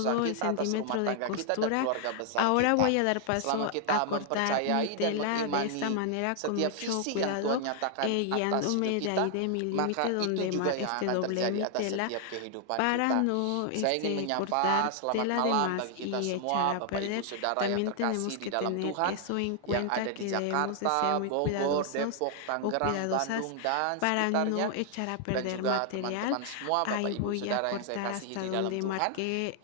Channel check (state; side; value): different; both; correlation 0.00